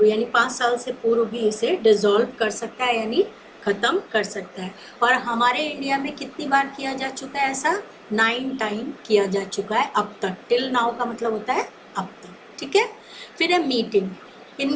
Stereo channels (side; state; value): both; identical; correlation 1.00